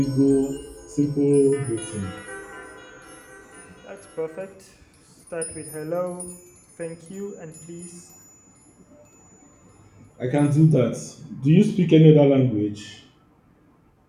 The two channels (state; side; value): identical; both; correlation 1.00